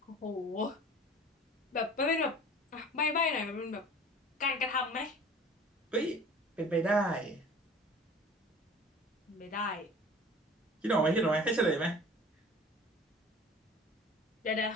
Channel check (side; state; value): both; normal; correlation 0.44